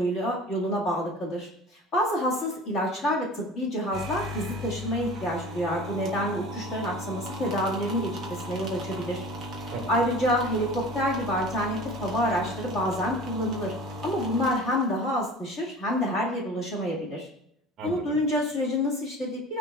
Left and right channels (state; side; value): normal; both; correlation 0.40